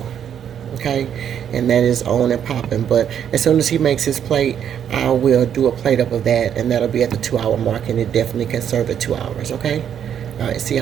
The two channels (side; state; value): left; quieter; 8.9 dB